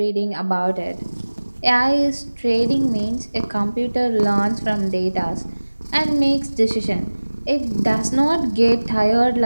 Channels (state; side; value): inverted; both; correlation -1.00